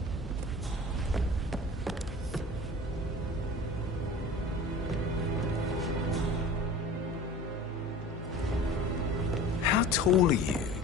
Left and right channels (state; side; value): normal; both; correlation 0.39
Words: How tall are you?